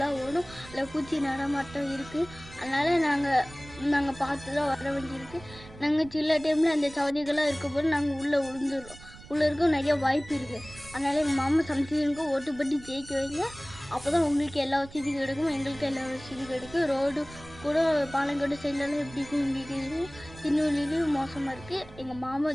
ஓடும். அதில் பூச்சி நடமாட்டம் இருக்குது. அதனால் நாங்கள் பார்த்து தான் வர வேண்டியிருக்கு. நாங்கள் சில டைமில் அந்த சவதிகளாக இருக்கும்போது நாங்கள் உள்ளே விழுந்துடுறோம். உள்ளே இருக்க நிறைய வாய்ப்பு இருக்குது. அதனால் எங்கள் மாமா சம்திங்க்கு ஓட்டு போட்டு ஜெயிக்க வைங்க. அப்போ தான் உங்களுக்கு எல்லா வசதியும் கிடைக்கும், எங்களுக்கு எல்லா வசதியும் கிடைக்கும். ரோடு கூட பாலங்கோட்டை சைட்லலாம் எப்படி இருக்கும் உங்களுக்கு தெரியும். திருநெல்வேலியும் மோசமாக இருக்குது. எங்கள் மாமா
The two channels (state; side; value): noise; right; rumble, 18 dB below the sound